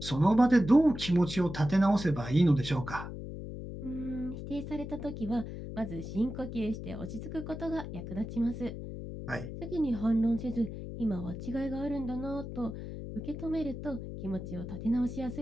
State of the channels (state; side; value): noise; left; hum, 8 dB below the sound